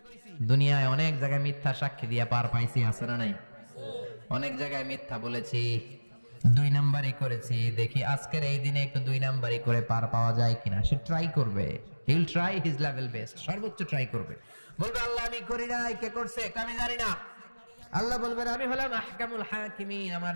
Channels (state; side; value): inverted; both; correlation -1.00